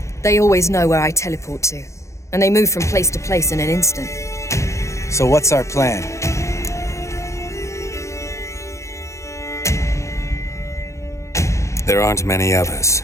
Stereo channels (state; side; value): late; right; 0.14 ms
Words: They always know where I teleport to, and they move from place to place in an instant. So what's our plan? There aren't many of us,